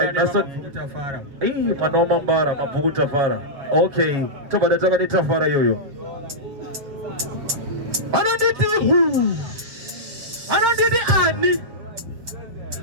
nasa mwana wa Mambara mabhuku tafara okay tobada taka ni tafara yoyo anonditi ani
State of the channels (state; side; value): late; left; 7.3 ms